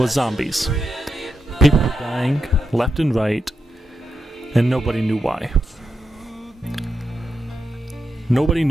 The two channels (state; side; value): normal; both; correlation 0.86